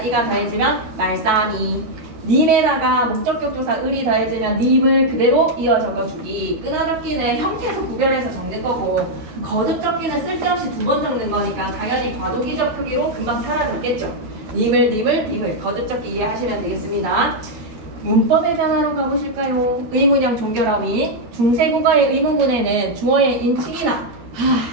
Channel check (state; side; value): late; left; 13 ms